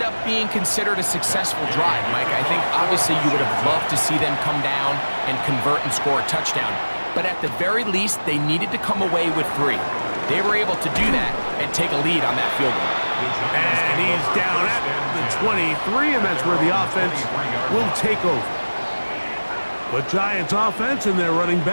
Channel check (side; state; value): both; inverted; correlation -1.00